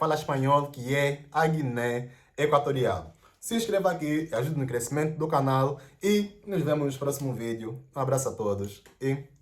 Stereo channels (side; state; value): both; identical; correlation 1.00